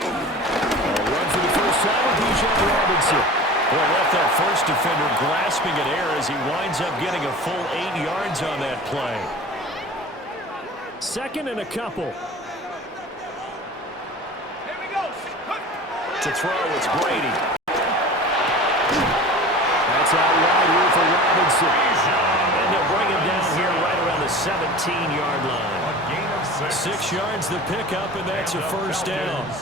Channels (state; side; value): normal; both; correlation 0.37